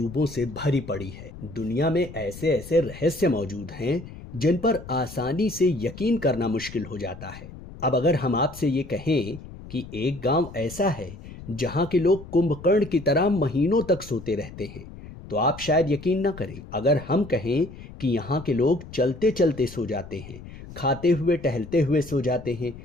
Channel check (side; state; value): left; noise; rumble, 15 dB below the sound